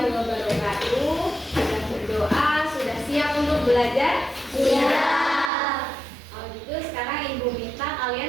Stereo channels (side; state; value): left; drops out; at 5.5 s